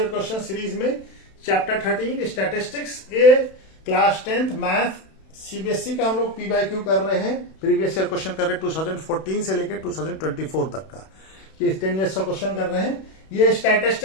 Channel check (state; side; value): late; right; 31 ms